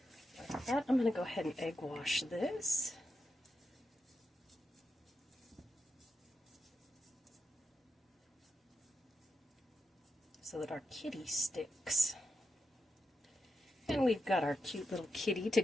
Like that. I'm going to go ahead and egg wash this. So that our kitty sticks. And we've got our cute little kitty to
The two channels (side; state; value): both; normal; correlation 0.87